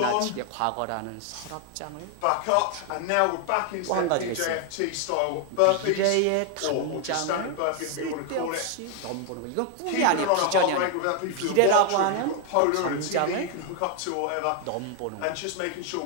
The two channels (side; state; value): both; different; correlation 0.00